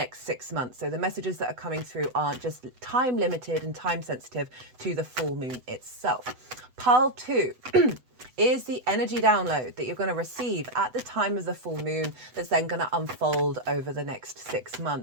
6 months. So the messages that are coming through aren't just time limited and time sensitive to the full moon itself. Pile 2 is the energy download that you're going to receive at the time of the full moon that's then going to unfold over the next 6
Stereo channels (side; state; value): left; late; 8.0 ms